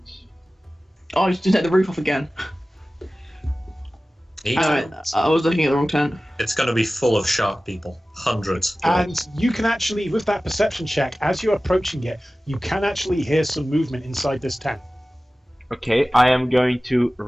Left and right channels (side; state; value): both; normal; correlation 0.96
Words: Oh, I just take the roof off again. I was looking at the wrong tent. It's going to be full of shark people. Hundreds. And you can actually, with that perception check, as you're approaching it, you can actually hear some movement inside this tent. Okay, I am going to